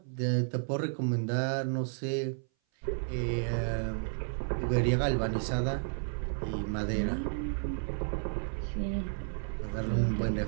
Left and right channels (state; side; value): silent; left; 56 dB below the other